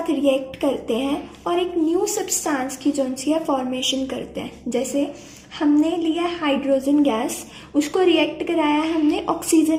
रिएक्ट करते हैं और एक न्यू सब्सटेंस की जो सी है फॉर्मेशन करते हैं। जैसे हमने लिया हाइड्रोजन गैस, उसको रिएक्ट कराया है हमने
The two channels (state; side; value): identical; both; correlation 1.00